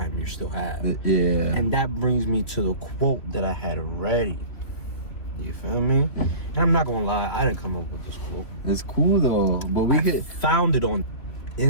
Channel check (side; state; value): right; late; 3.1 ms